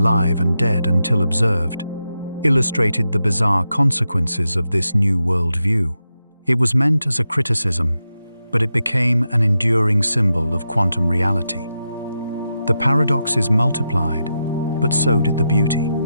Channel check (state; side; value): inverted; both; correlation -0.88